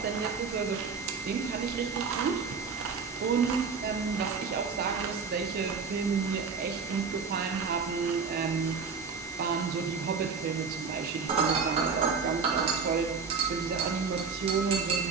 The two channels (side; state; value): left; quieter; 5.3 dB